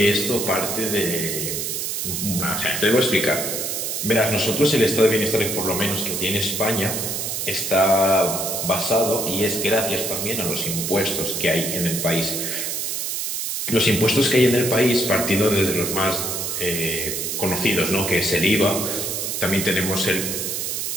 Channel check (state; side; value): noise; right; hiss, 2 dB below the sound